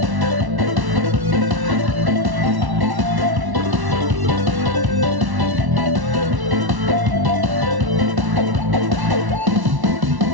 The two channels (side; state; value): left; late; 1.1 ms